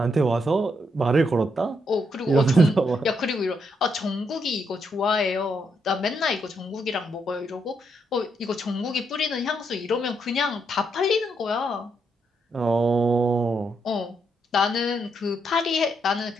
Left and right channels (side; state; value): both; normal; correlation 0.78